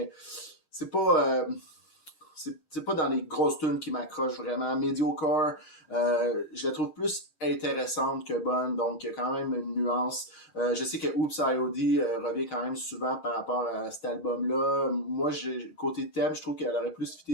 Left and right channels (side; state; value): right; late; 10 ms